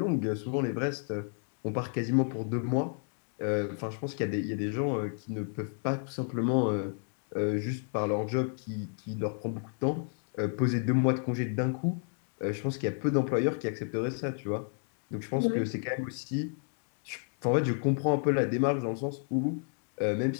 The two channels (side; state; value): right; silent; 57 dB below the other